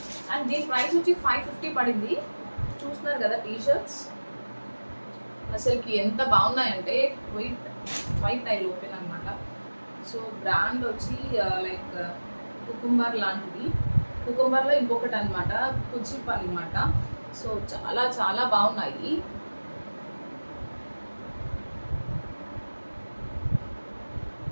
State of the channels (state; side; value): inverted; both; correlation -1.00